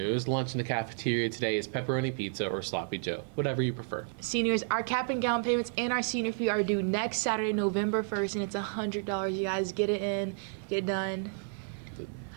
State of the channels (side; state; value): left; silent; digital silence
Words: lunch in the cafeteria today is pepperoni pizza or sloppy joe, whatever you prefer. Seniors, our cap and gown payments and our senior fee are due next Saturday, November 1st, and it's $100. You guys get it in, get it done.